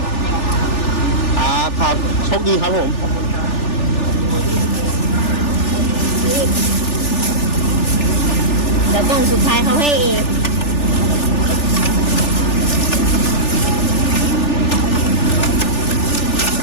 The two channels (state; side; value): late; right; 3.4 ms